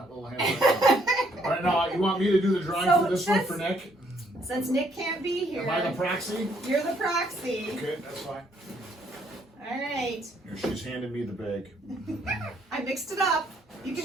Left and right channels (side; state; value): both; normal; correlation 0.68